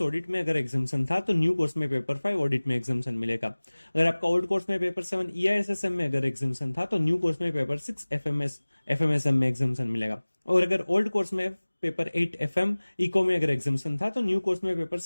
ऑडिट में अगर एग्जामेशन था तो न्यू कोर्स में पेपर 5 ऑडिट में एग्जामेशन मिलेगा। अगर आपका ओल्ड कोर्स में पेपर 7 ईआईएसएसएम में अगर एग्जामेशन था तो न्यू कोर्स में पेपर 6 एफएमएसएम में एग्जामेशन मिलेगा। और अगर ओल्ड कोर्स में पेपर 8 FM इको में अगर एग्जामेशन था तो न्यू कोर्स में पेपर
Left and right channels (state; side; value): inverted; both; correlation -1.00